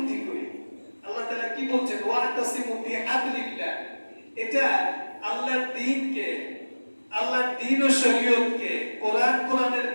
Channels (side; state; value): both; inverted; correlation -1.00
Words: করি, আল্লাহ তাআলা কি বলছেন ওয়াতাসিমু বিহাবলিল্লাহ, এটা আল্লাহর দ্বীনকে, আল্লাহর দ্বীন ও শরীয়তকে, কোরআনের